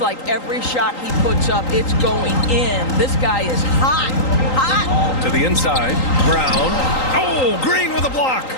every shot he puts up, it's going in. This guy is hot, hot. To the inside, Brown. Oh, Green with a block.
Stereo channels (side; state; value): right; late; 3.8 ms